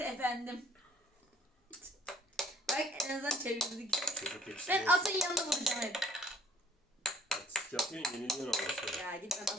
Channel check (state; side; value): normal; both; correlation 0.57